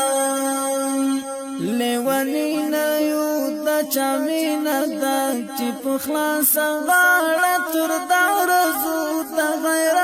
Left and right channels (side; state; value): both; identical; correlation 1.00